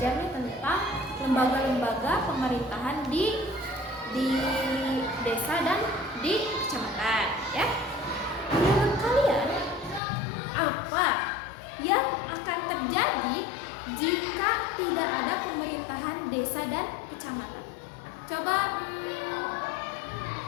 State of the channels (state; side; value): drops out; right; at 10.0 s